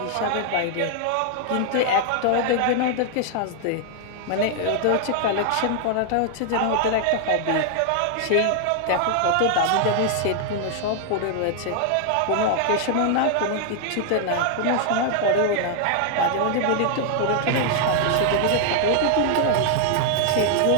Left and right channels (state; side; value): different; both; correlation 0.00